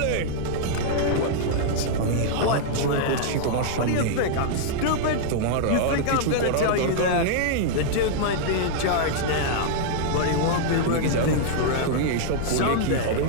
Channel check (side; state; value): both; different; correlation -0.01